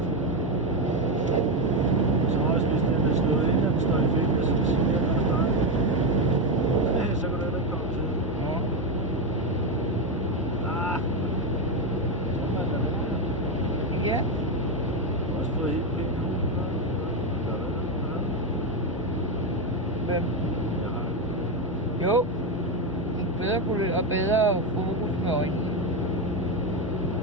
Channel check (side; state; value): both; normal; correlation 0.10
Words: Så også hvis den er slået ind, og den står i fedt, så siger jeg, så kan det ikke komme til. Ja. Også fået helt pænt nu. Hvem? Jo. Bedre kulør og bedre fokus med øjnene.